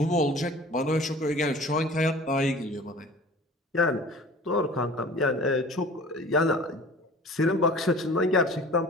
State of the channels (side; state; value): both; normal; correlation 0.43